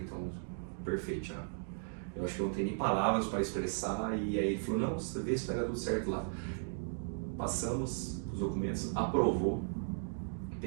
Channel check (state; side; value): silent; left; digital silence